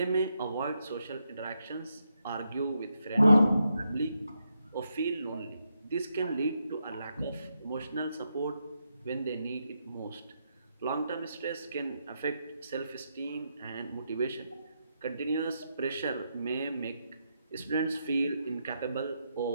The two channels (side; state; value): both; inverted; correlation -0.82